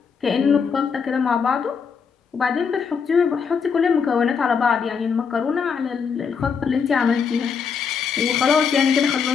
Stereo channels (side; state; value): right; quieter; 6.1 dB